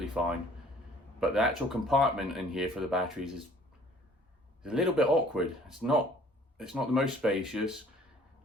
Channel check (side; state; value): both; normal; correlation 0.54